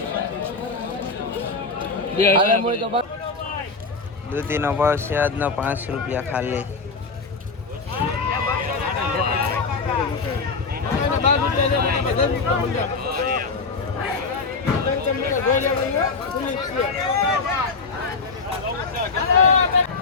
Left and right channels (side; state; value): right; quieter; 4.3 dB